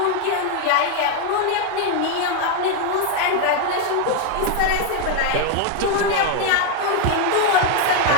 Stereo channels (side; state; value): both; different; correlation 0.01